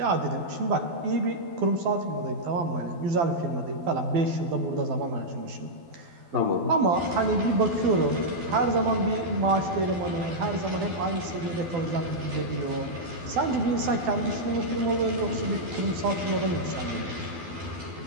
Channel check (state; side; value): late; left; 12 ms